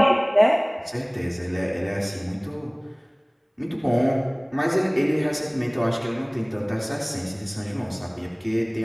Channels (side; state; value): both; identical; correlation 1.00